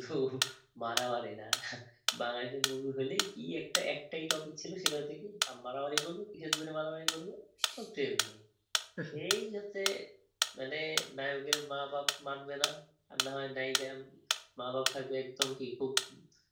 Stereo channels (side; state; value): both; identical; correlation 1.00